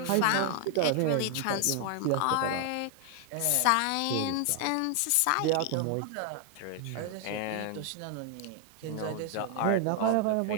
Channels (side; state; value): both; different; correlation 0.00